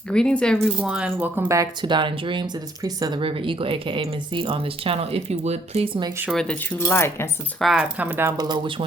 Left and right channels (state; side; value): normal; both; correlation 0.66